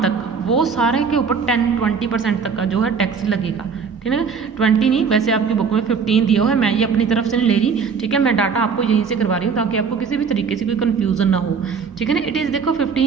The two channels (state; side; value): quieter; left; 5.8 dB